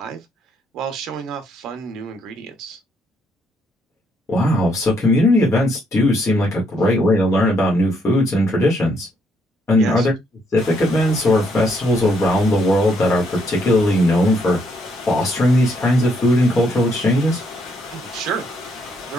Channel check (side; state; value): both; normal; correlation 0.73